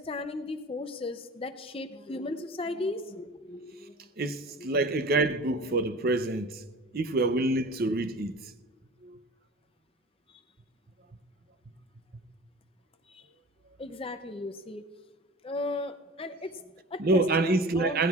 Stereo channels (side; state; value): both; normal; correlation 0.39